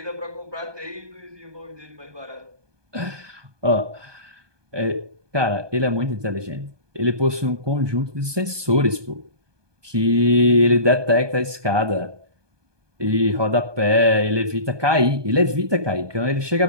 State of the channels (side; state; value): left; late; 1.2 ms